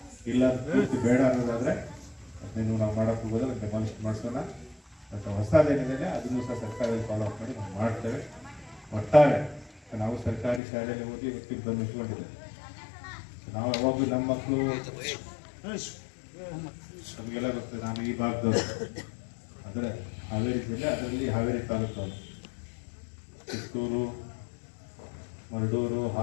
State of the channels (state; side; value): drops out; right; at 10.6 s